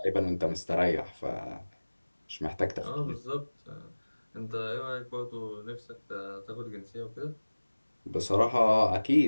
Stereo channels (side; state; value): both; inverted; correlation -1.00